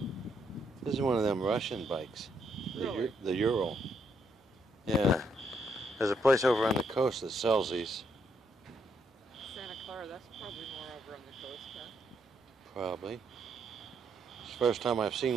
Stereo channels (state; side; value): normal; both; correlation 0.75